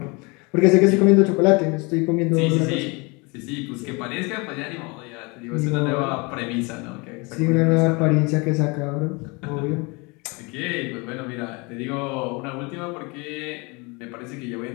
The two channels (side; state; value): right; quieter; 28.2 dB